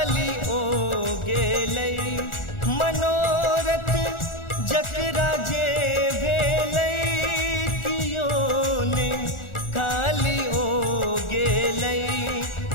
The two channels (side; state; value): right; late; 1.4 ms